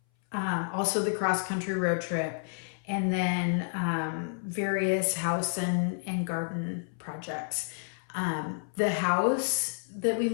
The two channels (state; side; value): silent; right; 58 dB below the other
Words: Also the cross-country road trip, and then various house and garden projects. The house that we